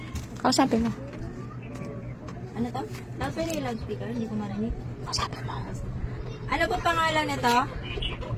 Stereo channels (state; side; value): identical; both; correlation 1.00